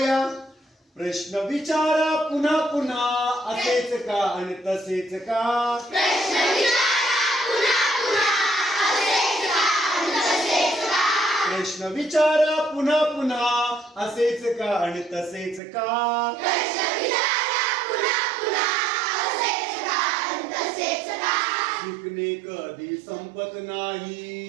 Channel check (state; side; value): drops out; left; at 15.6 s